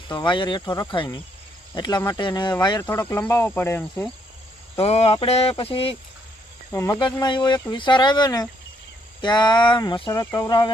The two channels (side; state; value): both; normal; correlation 0.72